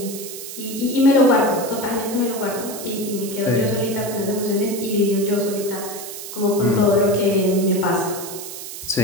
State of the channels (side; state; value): right; noise; hiss, 10 dB below the sound